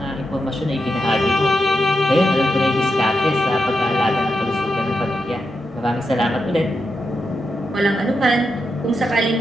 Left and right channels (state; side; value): normal; both; correlation 0.86